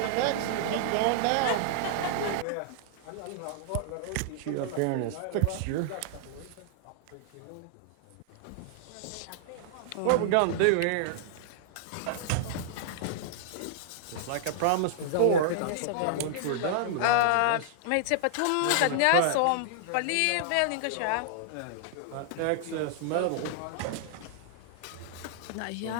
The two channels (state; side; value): different; both; correlation -0.01